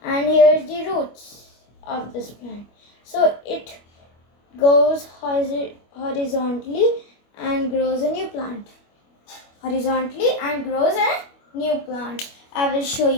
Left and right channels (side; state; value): right; late; 25 ms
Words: and here's the roots of this plant. So it goes horizontally and grows a new plant. Horizontally and grows a new plant. I will show